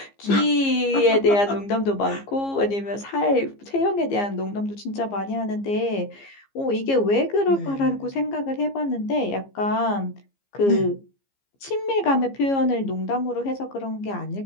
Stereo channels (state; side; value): late; right; 15 ms